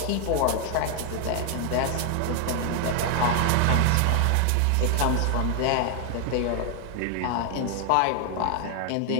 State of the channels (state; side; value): different; both; correlation 0.01